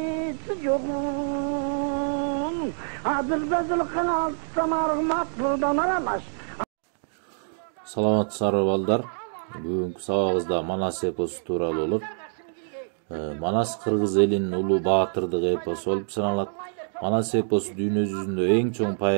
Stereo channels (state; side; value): silent; left; digital silence